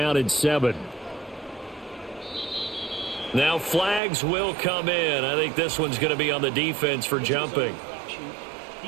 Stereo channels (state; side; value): drops out; left; at 4.0 s